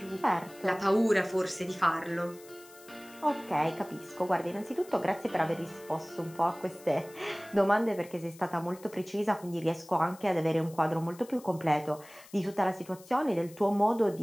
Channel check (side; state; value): left; noise; hiss, 22 dB below the sound